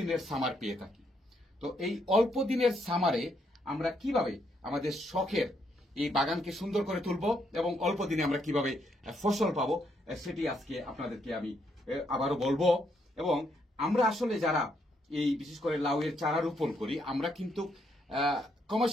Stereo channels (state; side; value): normal; both; correlation 0.75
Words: সামার পেয়ে থাকি। তো এই অল্প দিনের সামারে আমরা কিভাবে আমাদের শখের এই বাগানকে সুন্দর করে তুলব এবং অল্প দিনে আমরা কিভাবে ফসল পাবো সেটি আজকে আপনাদেরকে আমি আবারও বলবো। এবং আমরা আসলে যারা এই বিশেষ করে লাউয়ের চারা রোপণ করি আমরা কিন্তু